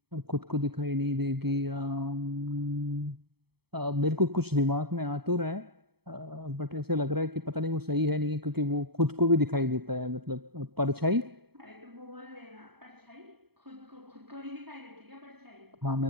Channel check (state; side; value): late; left; 0.97 ms